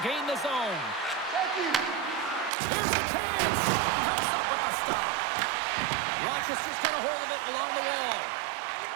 gain the zone. Here's a chance. Comes up with the stop. Rochester's got a hold of it along the wall.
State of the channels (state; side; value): drops out; left; at 2.5 s